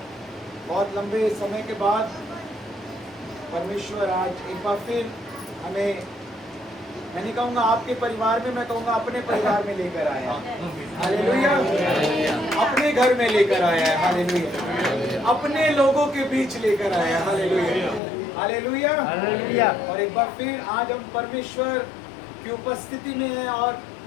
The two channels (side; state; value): right; drops out; at 18.0 s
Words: बहुत लंबे समय के बाद परमेश्वर आज एक बार फिर हमें, मैं नहीं कहूँगा आपके परिवार में, मैं कहूँगा अपने परिवार में लेकर आया है। हालेलुया। अपने घर में लेकर आया है। हालेलुया। अपने लोगों के बीच लेकर आया है। हालेलुया। हालेलुया। हालेलुया। और एक बार फिर आज हम परमेश्वर की उपस्थिति में हैं और